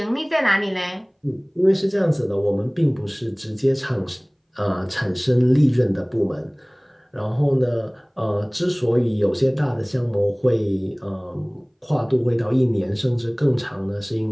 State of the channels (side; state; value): both; identical; correlation 1.00